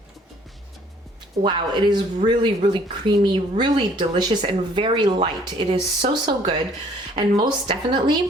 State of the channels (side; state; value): both; normal; correlation 0.59